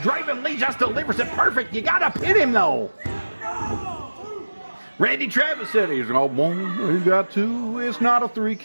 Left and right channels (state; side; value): inverted; both; correlation -1.00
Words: Lee just delivers it perfect. You got to pin him, though. Randy Travis said he's got 1, he's got 2. It's not a 3